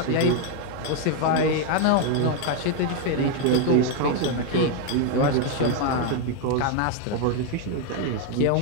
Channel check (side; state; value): both; different; correlation 0.00